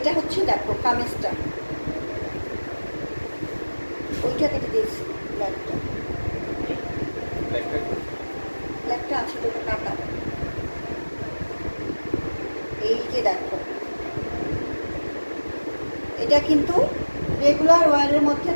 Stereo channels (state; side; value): inverted; both; correlation -1.00